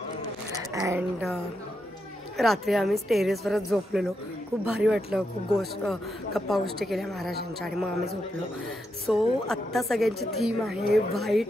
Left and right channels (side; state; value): both; normal; correlation 0.83